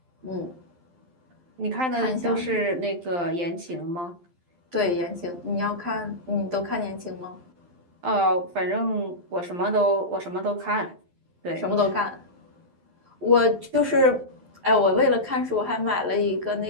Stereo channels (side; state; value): left; late; 12 ms